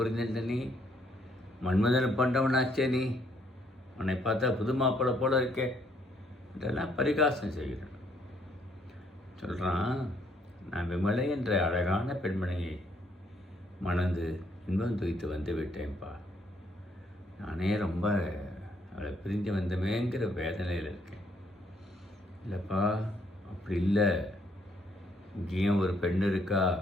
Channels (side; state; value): both; normal; correlation 0.69